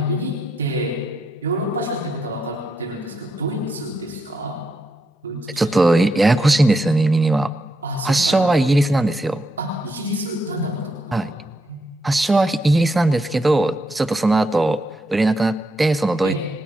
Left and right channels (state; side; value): normal; both; correlation 0.81